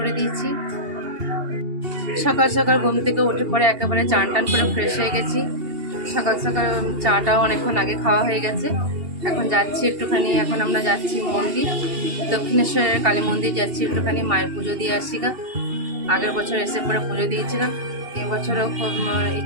দিয়েছি। সকাল সকাল ঘুম থেকে উঠে পরে একেবারে চান টান করে ফ্রেশ হয়ে গেছি। সকাল সকাল চাটাও অনেকক্ষণ আগে খাওয়া হয়ে গেছে। এখন যাচ্ছি একটুখানি, এখন আমরা যাচ্ছি মন্দির, দক্ষিণেশ্বরের কালী মন্দির যাচ্ছি, একটুখানি মায়ের পুজো দিয়ে আসি গা। আগের বছর এসে পরে পুজো দিয়েছিলাম, এবছরও খুব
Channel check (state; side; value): late; left; 2.8 ms